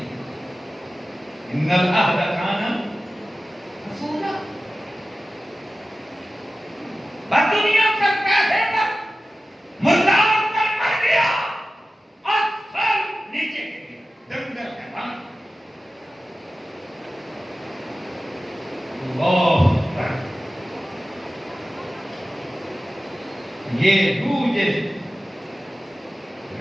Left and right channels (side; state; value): both; normal; correlation 0.95